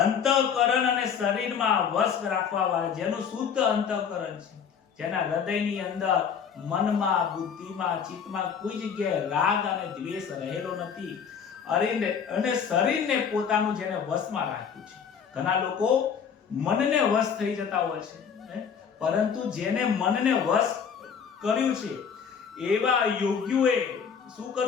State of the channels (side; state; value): right; quieter; 7.1 dB